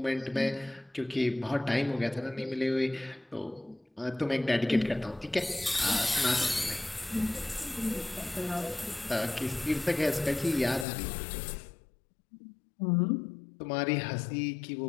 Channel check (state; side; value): drops out; right; at 10.9 s